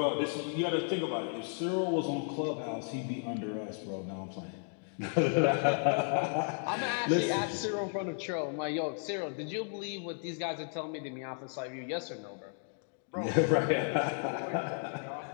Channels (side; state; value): right; silent; 55 dB below the other